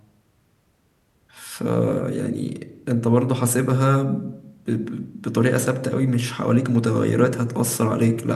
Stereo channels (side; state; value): both; identical; correlation 1.00